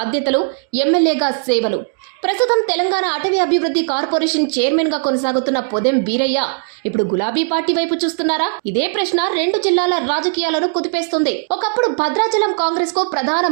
ఎమ్మెల్యేగా సేవలు. ప్రస్తుతం తెలంగాణ అటవీ అభివృద్ధి కార్పొరేషన్ చైర్మన్ గా కొనసాగుతున్న పొదెం వీరయ్య ఇప్పుడు గులాబీ పార్టీ వైపు చూస్తున్నారా? ఇదే ప్రశ్న రెండు జిల్లాల రాజకీయాలను కుదిపేస్తుంది. ఒకప్పుడు భద్రాచలం కాంగ్రెస్ కు ప్రధాన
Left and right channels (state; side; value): silent; left; digital silence